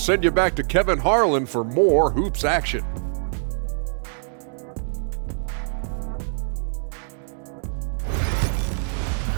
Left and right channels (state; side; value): silent; left; digital silence